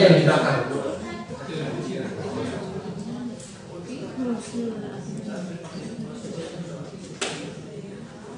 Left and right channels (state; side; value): identical; both; correlation 1.00